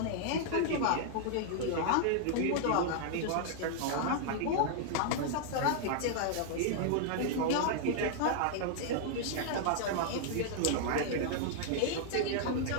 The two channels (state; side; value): different; both; correlation -0.01